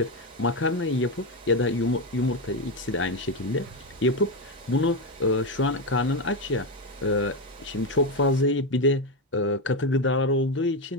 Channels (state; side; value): normal; both; correlation 0.11